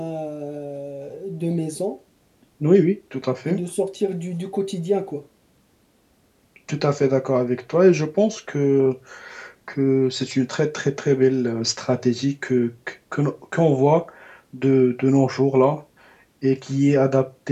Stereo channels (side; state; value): both; identical; correlation 1.00